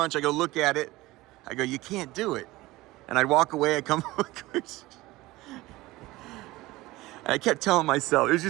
I go look at it. I go, you can't do it. And I'd walk away, I come and I kept telling myself,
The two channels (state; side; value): quieter; left; 19.1 dB